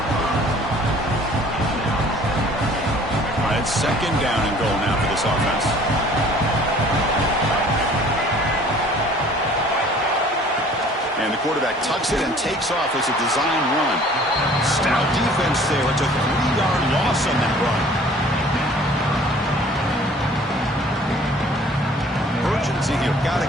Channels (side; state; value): both; normal; correlation 0.52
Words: It's second down and goal now for this offense. And the quarterback tucks it and takes off as a design run. Stout defense there. It's a 3-yard loss on that run. Urgency here. Got to